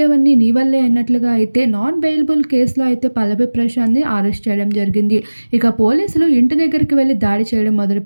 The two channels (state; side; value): inverted; both; correlation -1.00